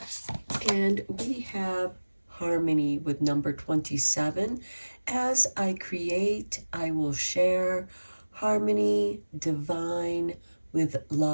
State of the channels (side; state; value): both; inverted; correlation -1.00